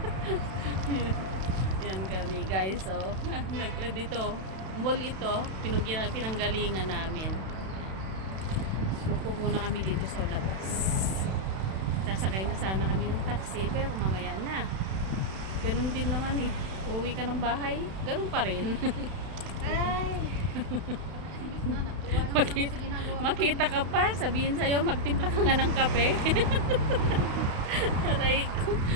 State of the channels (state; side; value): late; left; 31 ms